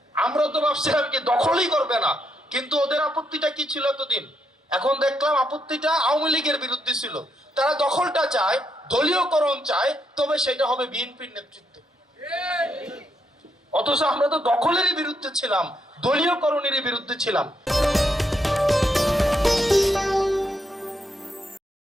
আমরা তো ভাবছিলাম কি দখলই করবে না, কিন্তু ওদের আপত্তিটা কি ছিল এতদিন, এখন দেখলাম আপত্তিটা আওয়ামী লীগের বিরুদ্ধে ছিল। তারা দখলটা চায়, দলীয়করণ চায়, তবে সেটা হবে বিএনপির নেতৃত্বে। অথচ আমরা তো দখলেরই বিরুদ্ধে ছিলাম, দলীয়করণেরই বিরুদ্ধে ছিলাম।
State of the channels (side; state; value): both; normal; correlation 0.78